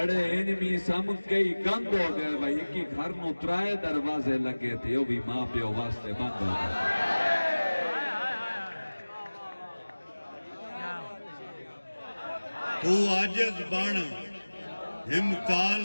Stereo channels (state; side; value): inverted; both; correlation -1.00